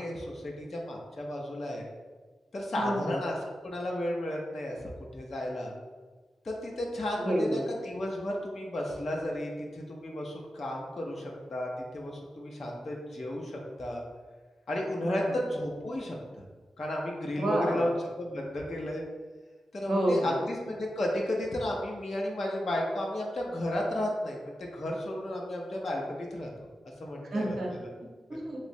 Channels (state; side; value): normal; both; correlation 0.90